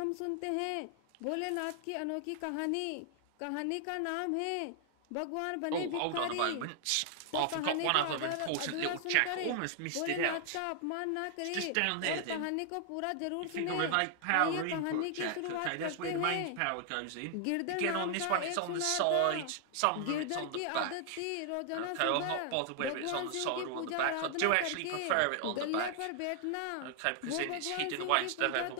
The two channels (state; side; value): different; both; correlation 0.00